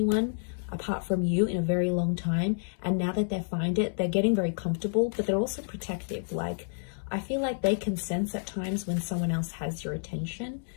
apart from you in a very long time, and now that they find it, they're getting very comfortable, but they're also protective. Like, I feel like they can sense at times when someone else has your attention,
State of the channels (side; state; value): right; silent; digital silence